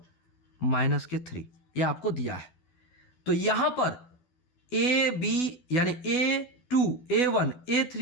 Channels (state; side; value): late; right; 12 ms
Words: माइनस के 3, ये आपको दिया है। तो यहां पर AB यानी A2, A1,